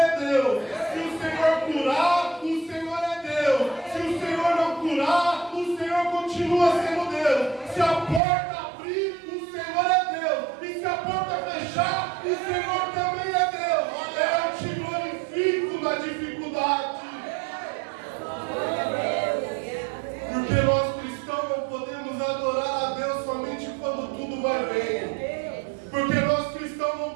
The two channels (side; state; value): left; drops out; at 8.2 s